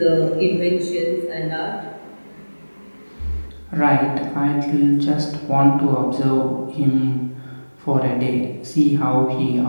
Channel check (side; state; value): both; inverted; correlation -1.00